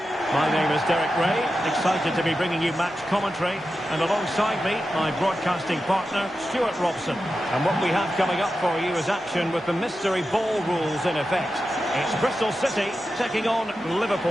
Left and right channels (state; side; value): normal; both; correlation 0.91